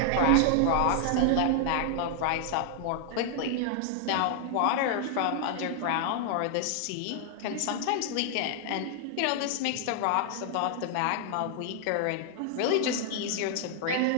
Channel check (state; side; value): different; both; correlation 0.00